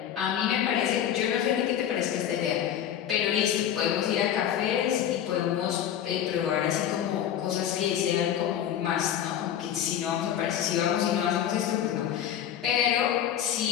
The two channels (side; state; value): right; quieter; 10.1 dB